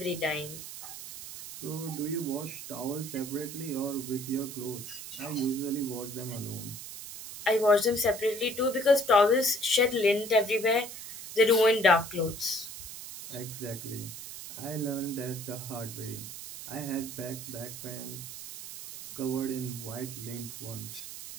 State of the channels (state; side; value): noise; right; hiss, 11 dB below the sound